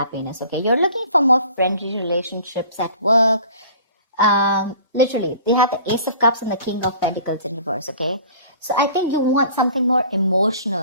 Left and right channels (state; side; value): inverted; both; correlation -0.47